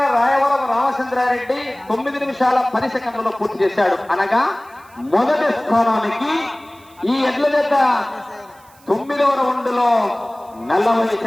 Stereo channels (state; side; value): noise; right; hiss, 28 dB below the sound